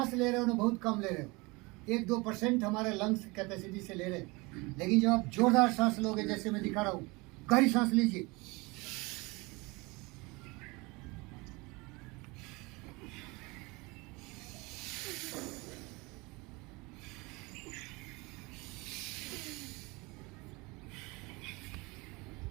ले रहे हो ना बहुत कम ले रहे हो, 1-2% हमारे लंग्स कैपेसिटी से ले रहे हैं। लेकिन जब आप जोरदार सांस लोगे, जैसे मैं दिखा रहा हूँ, गहरी सांस लीजिए,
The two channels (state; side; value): quieter; left; 25.2 dB